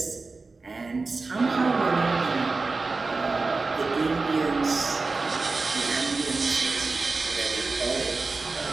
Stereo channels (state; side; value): quieter; left; 3.8 dB